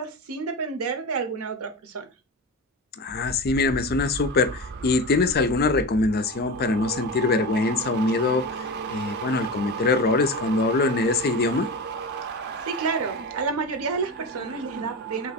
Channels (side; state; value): both; normal; correlation 0.24